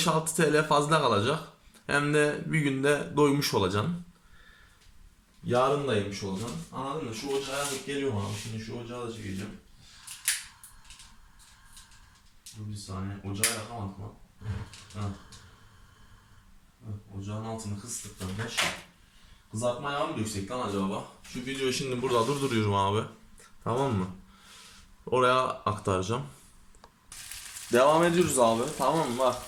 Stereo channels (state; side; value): identical; both; correlation 1.00